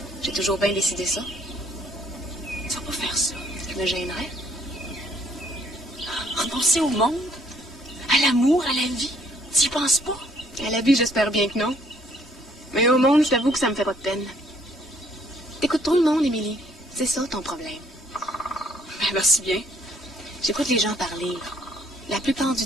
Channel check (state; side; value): normal; both; correlation 0.64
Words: J'ai toujours bien décidé ça. Tu vas pas faire ça. Je me gênerais. Renoncer au monde, à l'amour, à la vie. Tu y penses pas? À la vie, j'espère bien que non. Mais au monde, je t'avoue que ça me fait pas de peine. T'écoutes trop le monde, Émilie. C'est ça ton problème. Ben, merci bien. J'écoute les gens parler. La plupart du